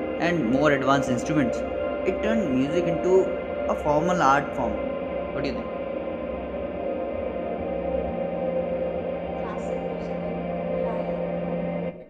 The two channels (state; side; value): identical; both; correlation 1.00